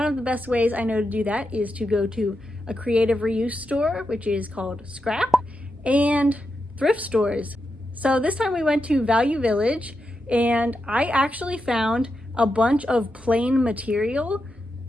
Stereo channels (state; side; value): normal; both; correlation 0.87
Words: of the best ways I know to do that is to go to a creative reuse store, which is called Scrap, and thrift stores. So this time we went to Value Village, and I actually found a bunch of plain material.